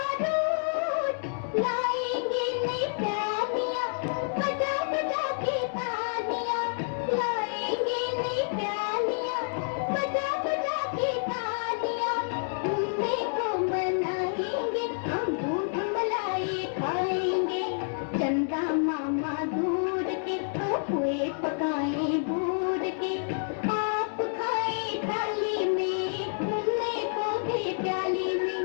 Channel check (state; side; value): silent; right; digital silence